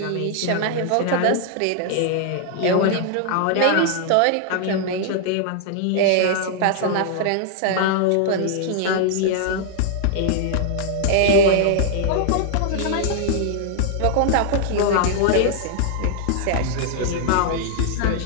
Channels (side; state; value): both; different; correlation 0.00